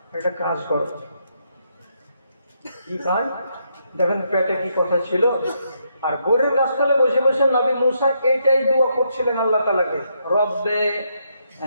একটা কাজ করো। কি কাজ? দেখেন পেটে কি কথা ছিল। আর গোরের গাছতলে বসে বসে নবী মুসা এইটাই দোয়া করছিলেন আল্লাহ তাআলাকে, রব্বে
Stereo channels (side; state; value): both; inverted; correlation -0.77